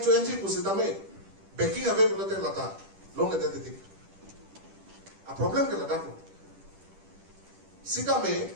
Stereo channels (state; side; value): late; left; 10 ms